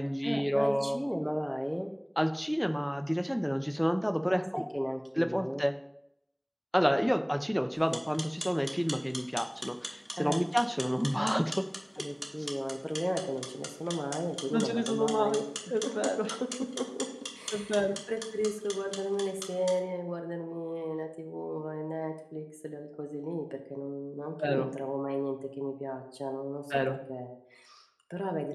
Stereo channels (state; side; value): identical; both; correlation 1.00